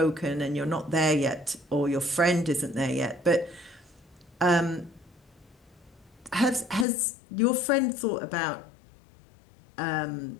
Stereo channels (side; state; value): right; drops out; at 6.9 s